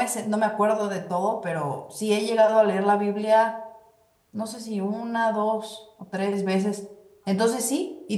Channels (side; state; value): both; identical; correlation 1.00